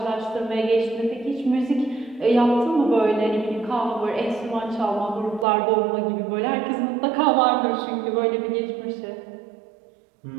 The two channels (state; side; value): drops out; left; at 5.5 s